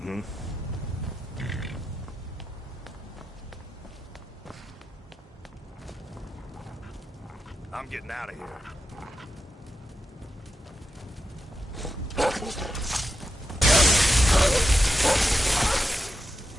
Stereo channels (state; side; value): normal; both; correlation 0.87